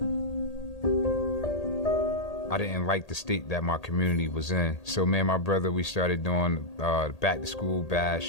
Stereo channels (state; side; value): late; right; 1.8 ms